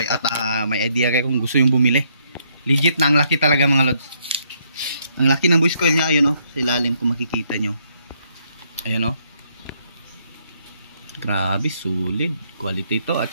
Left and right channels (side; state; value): both; inverted; correlation -0.72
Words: may idea kayo kung gusto yung bumili. Legit na, ang laki talaga mga lods. Ang laki ng voice coil niya, ayun sa ilalim kung makikita nyo. Ayun grabe, solid quality to, at